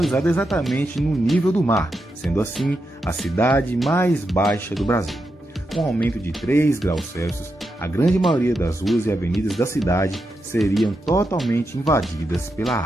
exatamente no nível do mar, sendo assim a cidade mais baixa do Brasil. Com um aumento de 3 graus Celsius, a grande maioria das ruas e avenidas da cidade seriam totalmente invadidas pela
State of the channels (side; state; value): both; normal; correlation 0.86